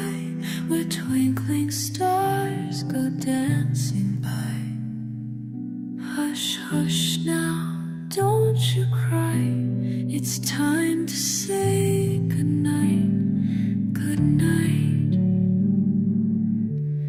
where twinkling stars go dancing by. Hush, hush now, don't you cry. It's time to say goodnight, goodnight.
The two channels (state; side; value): identical; both; correlation 1.00